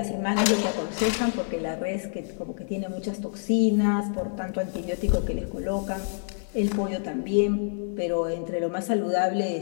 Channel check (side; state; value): right; silent; 55 dB below the other